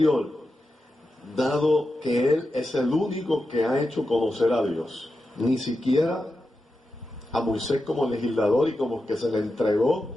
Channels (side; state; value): both; normal; correlation 0.90